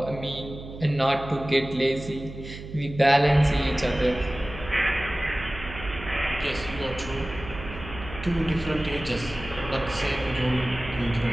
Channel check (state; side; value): noise; right; hum, 12 dB below the sound